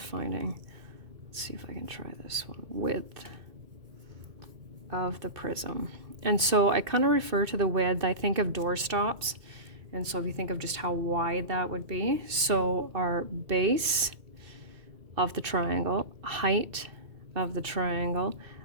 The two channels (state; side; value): late; left; 2.2 ms